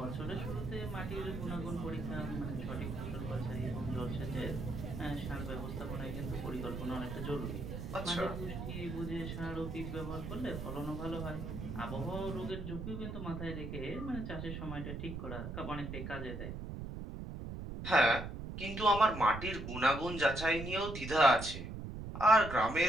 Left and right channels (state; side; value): noise; right; rumble, 6 dB below the sound